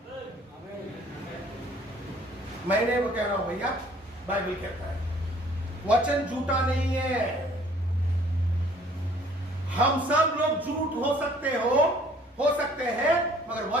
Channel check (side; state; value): both; normal; correlation 0.56